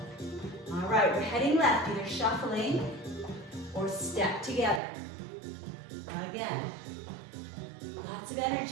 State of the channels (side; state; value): left; drops out; at 4.8 s